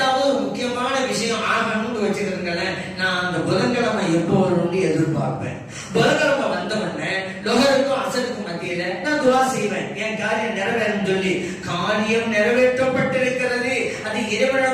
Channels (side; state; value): both; identical; correlation 1.00